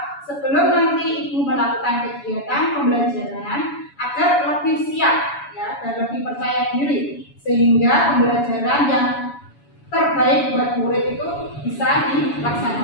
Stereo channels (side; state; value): right; late; 7.1 ms